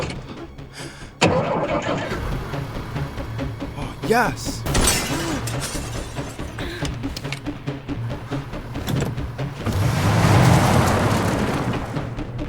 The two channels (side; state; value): both; identical; correlation 1.00